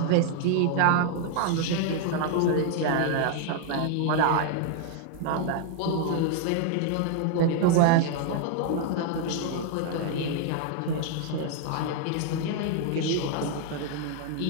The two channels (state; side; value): different; both; correlation 0.00